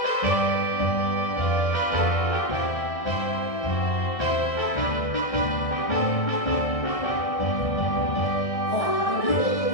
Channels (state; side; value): late; right; 1.6 ms